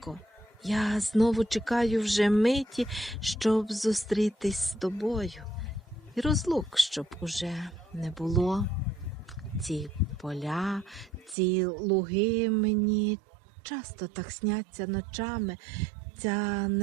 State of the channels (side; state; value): left; drops out; at 11.4 s